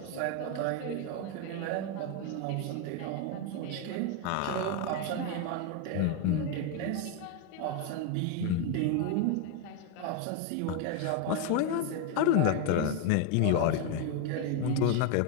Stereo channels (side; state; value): both; different; correlation 0.01